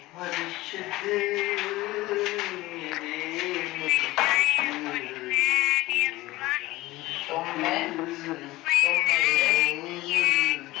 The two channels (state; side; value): quieter; right; 18.6 dB